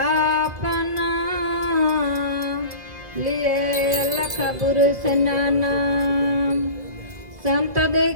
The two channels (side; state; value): left; late; 1.9 ms